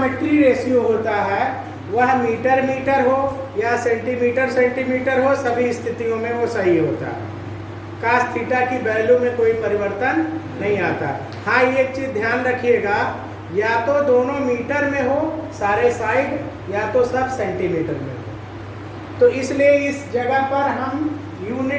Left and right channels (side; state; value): both; identical; correlation 1.00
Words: रेशियो होता है वह मीटर मीटर हो या सेंटीमीटर सेंटीमीटर हो, सभी स्थितियों में वो सही होता है। cos थीटा की वैल्यू में कोई परिवर्तन नहीं आता। हाँ, ये एक चीज ध्यान रखिएगा, या तो दोनों मीटर में हो सारे साइड, या तो सब सेंटीमीटर में हो। तो इसलिए इस जगह पर हम